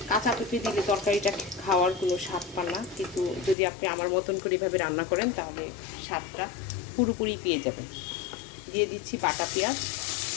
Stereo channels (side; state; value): right; drops out; at 3.6 s